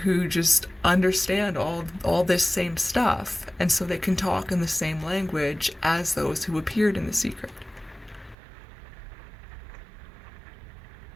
who just understand all this same stuff, and so they can talk in the same language as those who appeared in The Secret.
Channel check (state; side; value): drops out; left; at 8.3 s